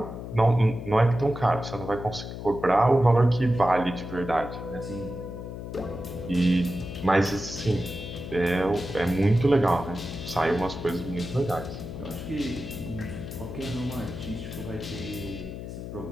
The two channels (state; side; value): noise; left; hum, 9 dB below the sound